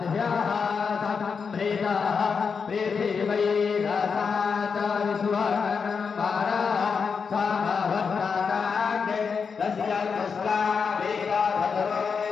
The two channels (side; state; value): right; quieter; 5.7 dB